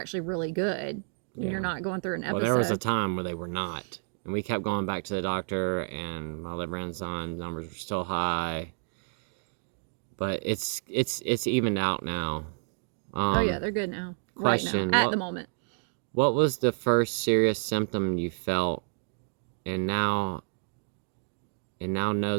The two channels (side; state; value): left; silent; digital silence